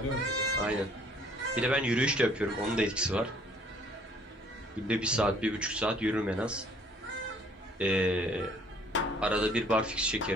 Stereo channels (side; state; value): both; normal; correlation 0.59